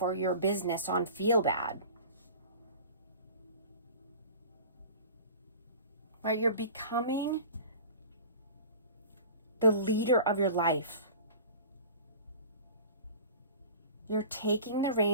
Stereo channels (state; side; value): inverted; both; correlation -0.40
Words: or your business on feel bad, right? You're becoming the leader of your life. You're taking the